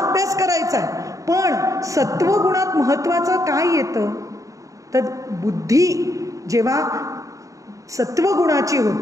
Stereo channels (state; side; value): late; left; 0.16 ms